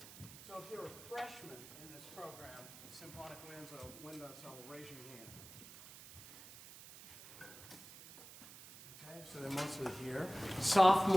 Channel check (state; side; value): noise; right; hiss, 16 dB below the sound